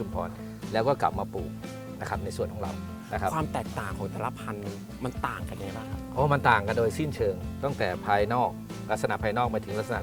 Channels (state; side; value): identical; both; correlation 1.00